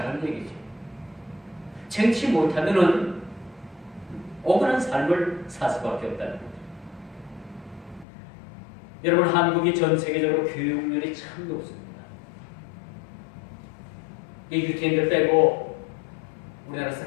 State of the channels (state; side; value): drops out; right; at 8.1 s